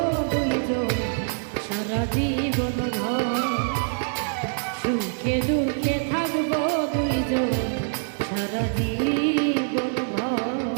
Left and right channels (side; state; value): left; silent; digital silence